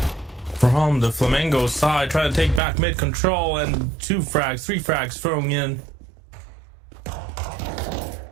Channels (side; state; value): left; drops out; at 2.6 s